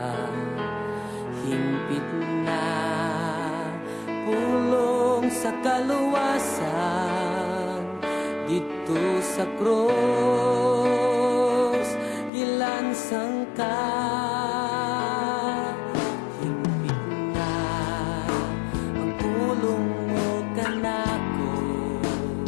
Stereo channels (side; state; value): right; drops out; at 12.3 s